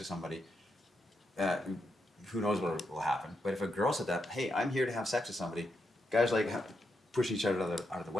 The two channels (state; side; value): normal; both; correlation 0.83